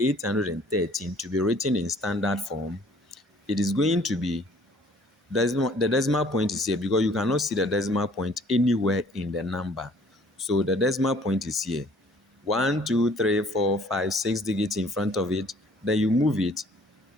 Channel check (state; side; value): normal; both; correlation 0.56